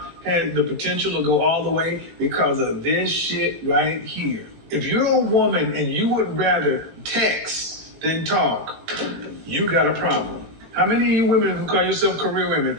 had the potential to go all the way because of this shit right here. If you're a woman and you would rather text than talk, you got a problem. How many of you women who call yourself career women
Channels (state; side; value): late; left; 18 ms